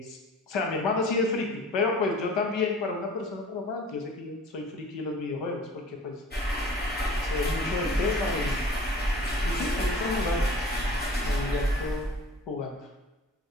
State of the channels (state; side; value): normal; both; correlation 0.45